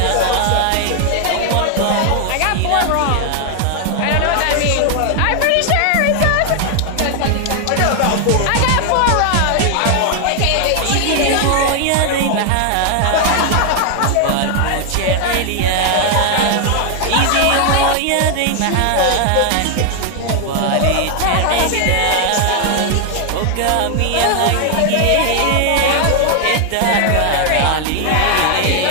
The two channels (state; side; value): different; both; correlation 0.00